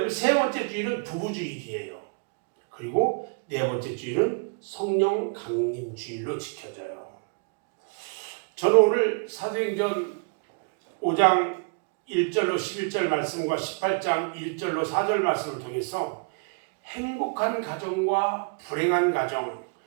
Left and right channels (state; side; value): quieter; left; 36.3 dB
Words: 세 번째 주일은 부부 주일이에요. 그리고 네 번째 주일은 성령 강림 주일로 지켜져요. 저는 오늘 사도행전 5장 1절로 11절 말씀과 18장 1절로 4절 말씀을 통해서 행복한 가정과 불행한 가정,